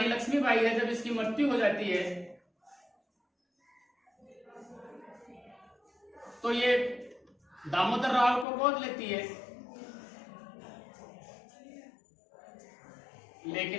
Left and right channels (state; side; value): drops out; right; at 8.5 s